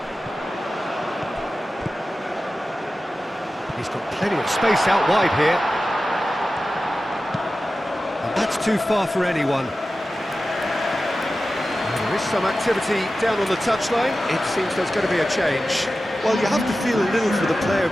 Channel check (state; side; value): normal; both; correlation 0.94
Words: He's got plenty of space out wide here. And That's too far for anyone. There is some activity down on the touchline. It seems there's going to be a change. Well, you have to feel a little for the player